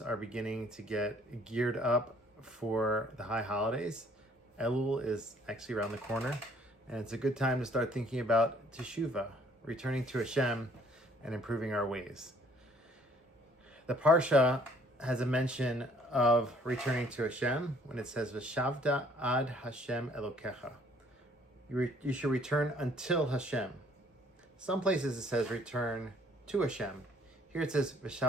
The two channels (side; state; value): both; normal; correlation 0.60